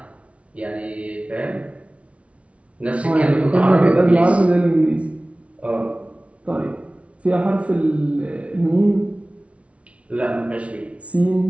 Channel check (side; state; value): left; late; 0.063 ms